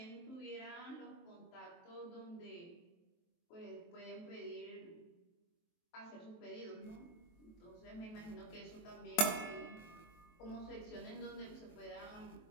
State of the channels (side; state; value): right; late; 23 ms